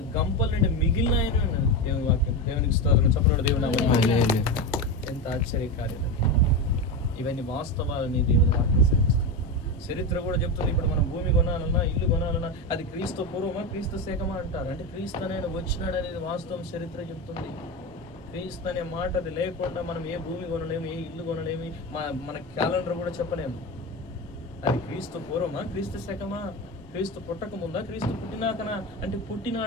గంపల నుండి మిగిలిన దేవుని వాక్యం. దేవునికి స్తోత్రం. చెప్పండి దేవుని. ఎంత ఆశ్చర్యకార్యం. ఇవన్నీ వాస్తవాలని దేవుని వాక్యం సెలవిస్తుంది. చరిత్ర కూడా చెప్తుంది. ఇప్పుడు మనం భూమి కొనాలన్నా, ఇల్లు కొనాలన్నా అది క్రీస్తు పూర్వమా, క్రీస్తు శకమా అంటారు. అంటే క్రీస్తు అనేది వచ్చినాడు అనేది వాస్తవం చరిత్ర చెప్తుంది. క్రీస్తు అనే మాట అది లేకుండా మనం ఏ భూమి కొనలేము, ఏ ఇల్లు కొనలేము, మన క్యాలెండర్ కూడా చెప్పలేము. అది క్రీస్తు పూర్వమా, క్రీస్తు శకమా, క్రీస్తు పుట్టక ముందా, క్రీస్తు పుట్టినాకనా అంటే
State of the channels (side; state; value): both; normal; correlation 0.18